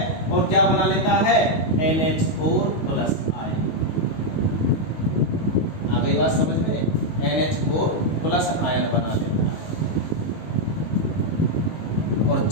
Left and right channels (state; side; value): late; right; 19 ms